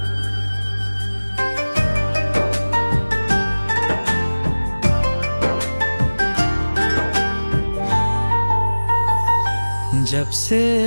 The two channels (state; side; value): inverted; both; correlation -1.00